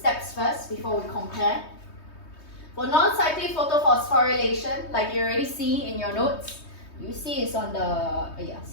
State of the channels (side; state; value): right; late; 3.2 ms